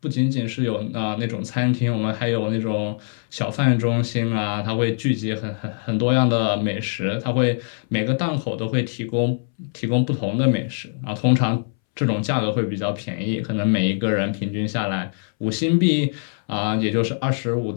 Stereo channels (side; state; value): right; silent; 64 dB below the other